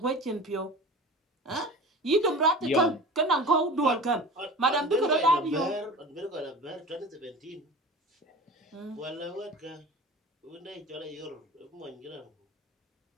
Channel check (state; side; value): normal; both; correlation 0.35